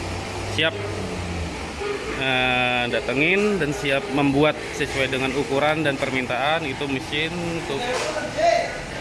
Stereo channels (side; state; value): both; identical; correlation 1.00